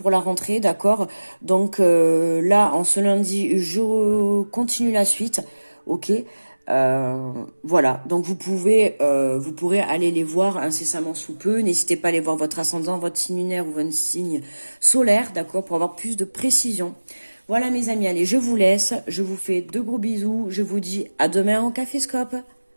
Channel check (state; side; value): inverted; both; correlation -1.00